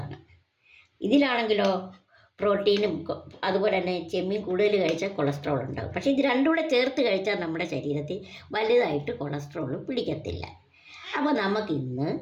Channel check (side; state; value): both; identical; correlation 1.00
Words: ഇതിലാണെങ്കിലോ പ്രോട്ടീനും അതുപോലെ തന്നെ ചെമ്മീൻ കൂടുതൽ കഴിച്ചാൽ കൊളസ്ട്രോൾ ഉണ്ടാകും. പക്ഷേ ഇത് രണ്ടും കൂടെ ചേർത്ത് കഴിച്ചാൽ നമ്മുടെ ശരീരത്തിൽ വലുതായിട്ട് കൊളസ്ട്രോൾ പിടിക്കത്തില്ല. അപ്പോൾ നമുക്കിന്ന്